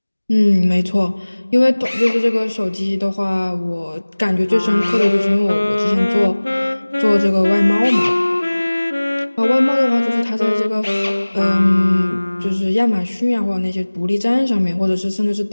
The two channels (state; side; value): inverted; both; correlation -1.00